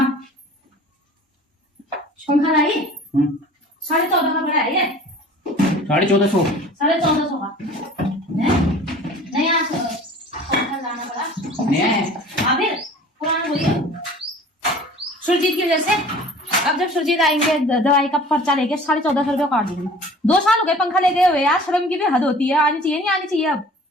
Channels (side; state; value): both; normal; correlation 0.46